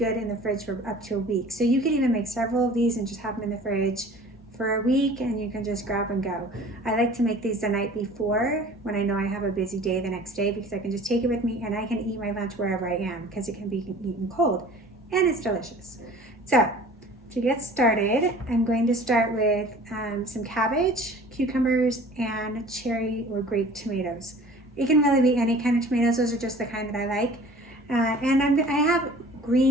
in the fridge for up to a week. So you can even make several of these and just have them in the fridge for a week and you can just grab and go. I like to make these the night before when I know I have a busy day the next day, because I can just take it with me and I can eat my lunch wherever I am because it can be eaten cold and it's delicious. So to get started, I'm going to start with some cabbage, cucumbers, and cherry or grape tomatoes. It can really be any kind of tomatoes. Those are just the kind that I like. And I have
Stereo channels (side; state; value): both; normal; correlation 0.46